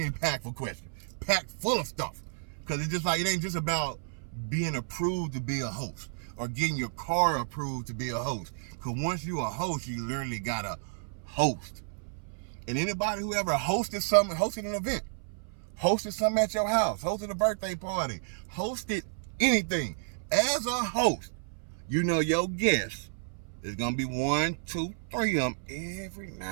impactful question. Packed full of stuff. Because it's just like, it ain't just about being approved to be a host or getting your car approved to be a host. Because once you a host, you literally got to host. And anybody who ever hosted an event, hosted something at your house, hosted a birthday party, hosted anything, as a host, you know your guests is going to be 1, 2, 3 of them every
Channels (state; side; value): silent; left; 57 dB below the other